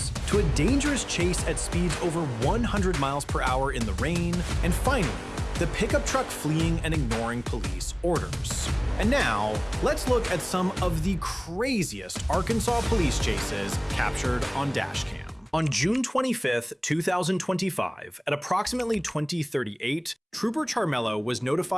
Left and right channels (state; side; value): identical; both; correlation 1.00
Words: to a dangerous chase at speeds over 100 miles per hour in the rain, and finally, the pickup truck fleeing and ignoring police orders. And now, let's look at some of the craziest Arkansas police chases captured on Dashcam. On June 25, 2025, at approximately 20:38, Trooper Charmello was